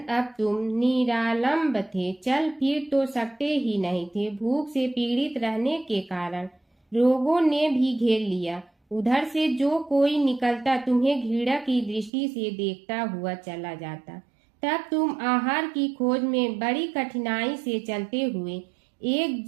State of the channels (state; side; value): drops out; left; at 12.1 s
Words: तुम निरालंब थे, चल फिर तो सकते ही नहीं थे। भूख से पीड़ित रहने के कारण रोगों ने भी घेर लिया। उधर से जो कोई निकलता तुम्हें घृणा की दृष्टि से देखता हुआ चला जाता। तब तुम आहार की खोज में बड़ी कठिनाई से चलते हुए एक